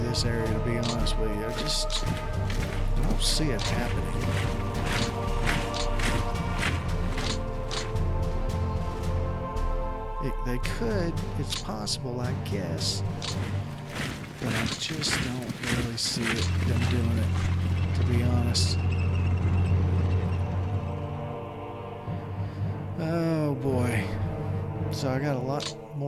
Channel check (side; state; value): both; identical; correlation 1.00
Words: this area, to be honest with you. I don't see it happening. They could, it's possible, I guess, but I just don't really see them doing it, to be honest. Oh boy. So I got a lot